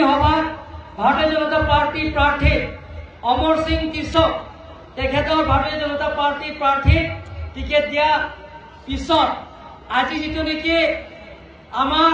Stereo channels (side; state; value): both; identical; correlation 1.00